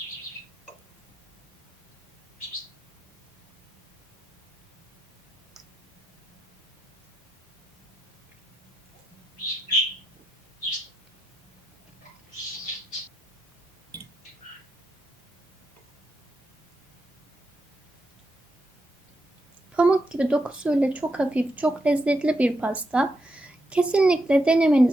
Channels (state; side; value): normal; both; correlation 0.83